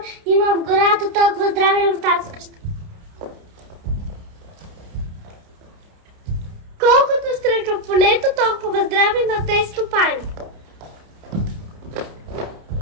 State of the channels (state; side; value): late; left; 30 ms